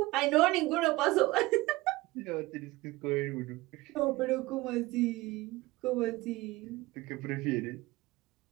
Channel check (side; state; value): left; quieter; 20.1 dB